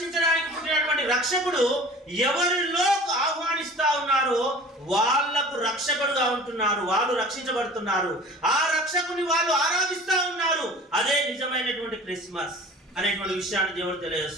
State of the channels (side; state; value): both; normal; correlation 0.42